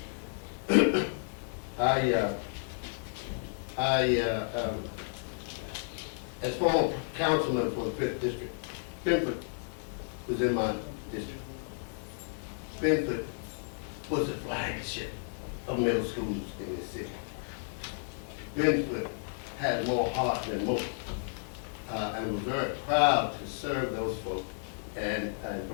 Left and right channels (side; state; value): right; silent; 56 dB below the other